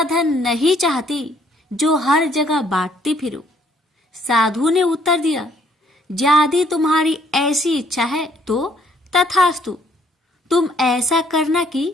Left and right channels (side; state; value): both; normal; correlation 0.65